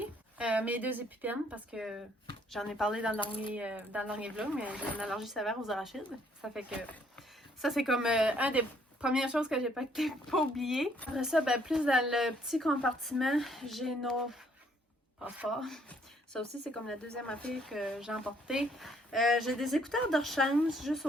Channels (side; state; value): both; normal; correlation 0.66